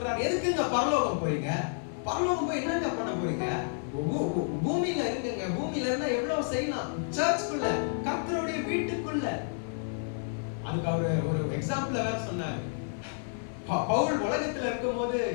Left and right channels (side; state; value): right; silent; 58 dB below the other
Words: எதுக்குங்க பரலோகம் போறீங்க? பரலோகம் போய் என்னங்க பண்ண போறீங்க? பூமியில இருக்குங்க, பூமியில இருந்தா எவ்வளவு செய்யலாம், சர்ச்சுக்குள்ள, கர்த்தருடைய வீட்டுக்குள்ள. அதுக்கு அவர் ஒரு எக்ஸாம்பிள் வேற சொன்னார். பவுல் உலகத்துல இருக்கும் போது